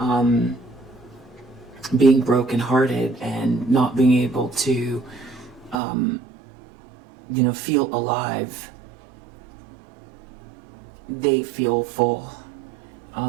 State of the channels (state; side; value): drops out; left; at 5.8 s